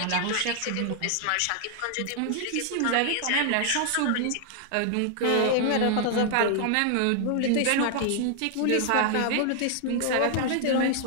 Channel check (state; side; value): different; both; correlation 0.00